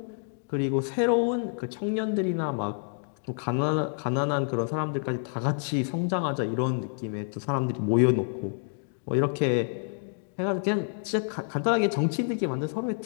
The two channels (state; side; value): silent; right; 59 dB below the other